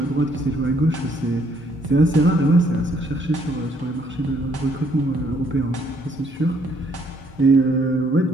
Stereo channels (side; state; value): both; normal; correlation 0.67